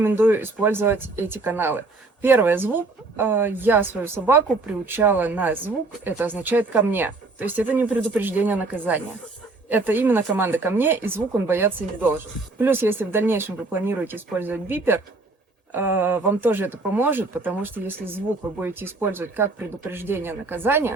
использовать эти каналы? Первое — звук. Я свою собаку приучала на звук, это означает «ко мне». То есть это не предупреждение наказания. Это именно команда «ко мне», и звук он бояться не должен. Плюс, если в дальнейшем вы планируете использовать бипер, вам тоже это поможет, потому что если звук вы будете использовать как предупреждение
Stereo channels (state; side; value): quieter; left; 3.4 dB